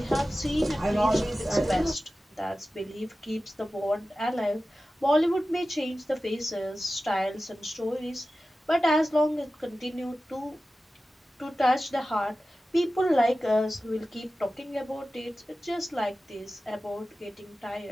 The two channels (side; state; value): both; normal; correlation 0.95